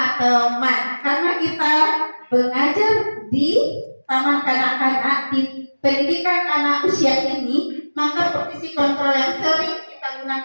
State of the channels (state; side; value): inverted; both; correlation -1.00